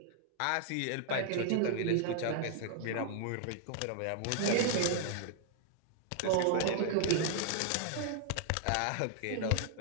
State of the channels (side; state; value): both; different; correlation -0.01